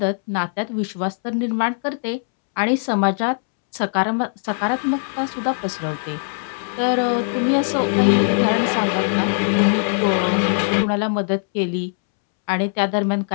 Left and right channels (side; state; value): right; silent; 65 dB below the other